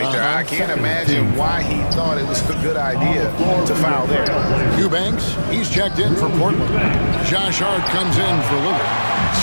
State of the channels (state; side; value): inverted; both; correlation -1.00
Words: there. I can't imagine why he thought it was a good idea to foul there. Eubanks, he's checked in for Portland. Josh Hart comes in for Lillard.